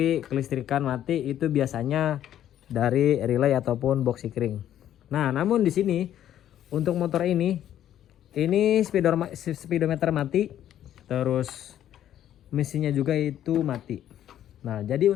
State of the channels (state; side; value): quieter; right; 11.3 dB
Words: kelistrikan mati, itu biasanya dari relay ataupun box sikring. Nah, namun di sini untuk motor ini speedometer mati, terus mesinnya juga itu mati. Nah, jadi